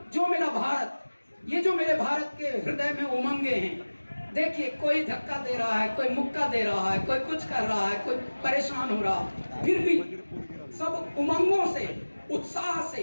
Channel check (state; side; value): inverted; both; correlation -1.00